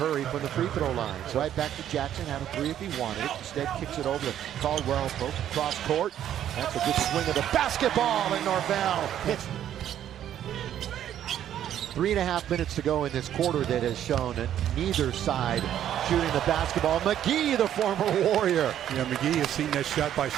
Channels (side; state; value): left; quieter; 10.8 dB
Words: from the free throw line. So right back to Jackson, had a three if he wanted it. Instead kicks it over to Caldwell, cross court. That's a good swing of the basketball, and Norvell hits. 3.5 minutes to go in this quarter that has shown that neither side shooting the basketball. McGee, the former Warrior. Yeah, McGee has seen that shot by